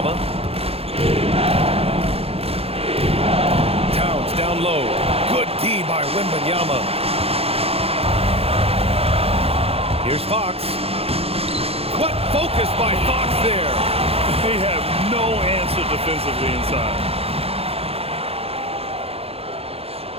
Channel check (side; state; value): left; late; 0.29 ms